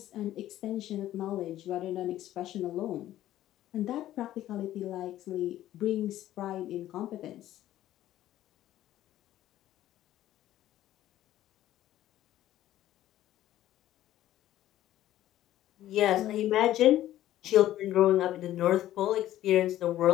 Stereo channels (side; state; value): right; quieter; 13.5 dB